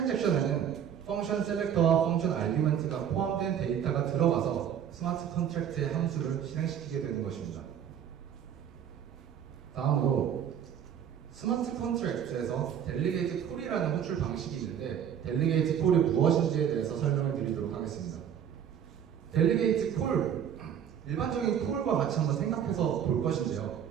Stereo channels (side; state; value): left; quieter; 8.9 dB